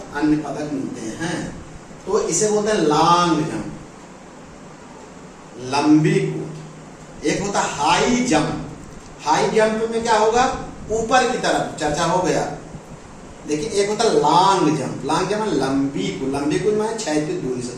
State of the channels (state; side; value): identical; both; correlation 1.00